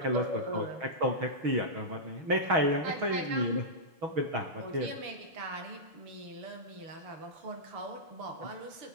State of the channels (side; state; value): left; late; 6.3 ms